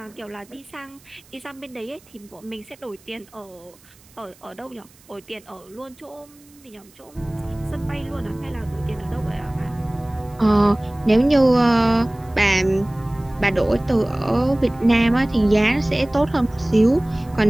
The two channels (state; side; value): noise; right; hiss, 28 dB below the sound